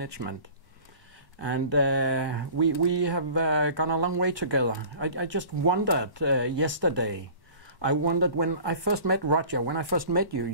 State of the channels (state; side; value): late; right; 1.1 ms